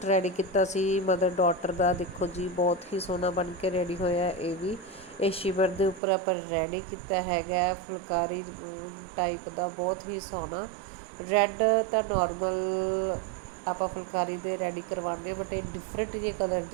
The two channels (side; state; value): left; drops out; at 6.0 s